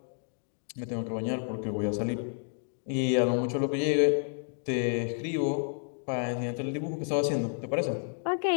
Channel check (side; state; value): right; silent; 58 dB below the other